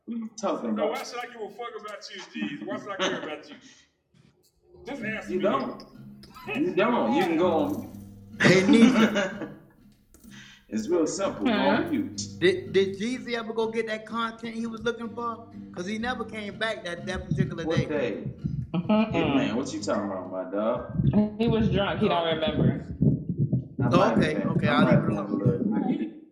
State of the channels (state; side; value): identical; both; correlation 1.00